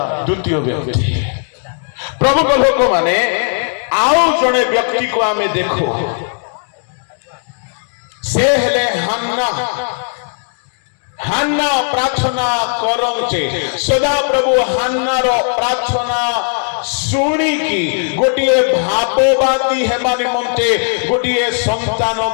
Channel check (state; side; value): silent; right; 60 dB below the other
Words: ଦ୍ୱିତୀୟ ବ୍ୟକ୍ତି। ପ୍ରଭୁଙ୍କ ଲୋକମାନେ ଆଉ ଜଣେ ବ୍ୟକ୍ତିକୁ ଆମେ ଦେଖୁ, ସେ ହେଲେ ହାନ୍ନା। ହାନ୍ନା ପ୍ରାର୍ଥନା କରନ୍ତେ ସଦାପ୍ରଭୁ ହାନ୍ନାର ପ୍ରାର୍ଥନା ଶୁଣିକି ଗୋଟିଏ ଭାବବାଦୀ ହେବା ନିମନ୍ତେ ଗୋଟିଏ